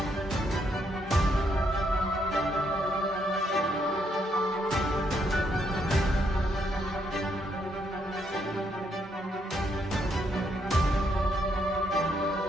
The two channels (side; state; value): both; normal; correlation 0.75